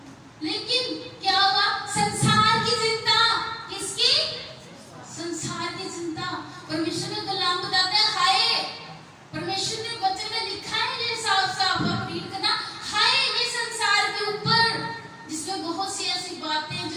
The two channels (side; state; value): both; identical; correlation 1.00